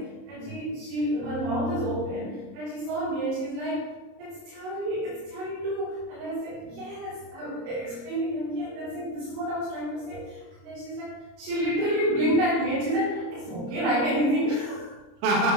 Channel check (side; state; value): left; late; 30 ms